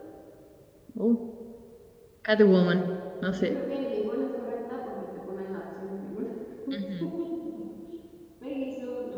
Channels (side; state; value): both; identical; correlation 1.00